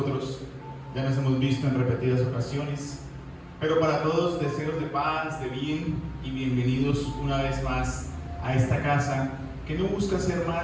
ya nos hemos visto en repetidas ocasiones. Pero para todos, deseos de paz, de bien y bienvenidos una vez más a esta casa que no busca ser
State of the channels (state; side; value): identical; both; correlation 1.00